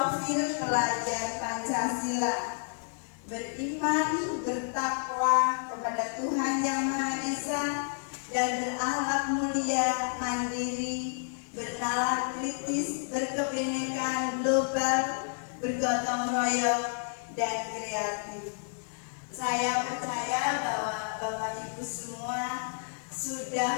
pelajar Pancasila: beriman, bertakwa kepada Tuhan Yang Maha Esa, dan berakhlak mulia, mandiri, bernalar kritis, berkebinekaan global, bergotong royong, dan kreatif. Saya percaya bahwa Bapak Ibu semua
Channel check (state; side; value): silent; right; digital silence